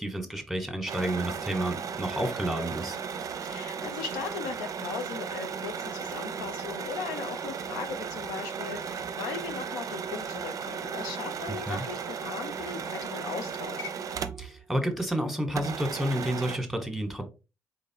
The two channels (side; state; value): both; normal; correlation 0.61